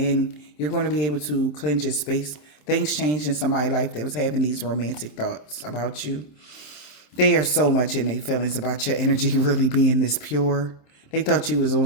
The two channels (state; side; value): late; right; 27 ms